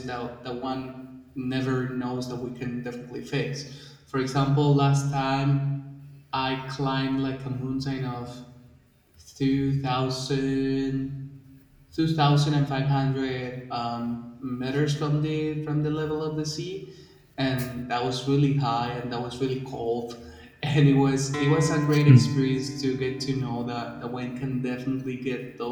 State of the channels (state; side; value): identical; both; correlation 1.00